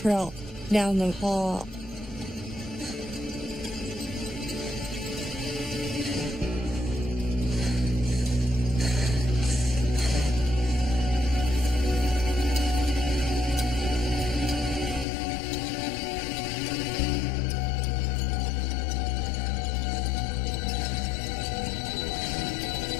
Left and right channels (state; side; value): drops out; right; at 15.1 s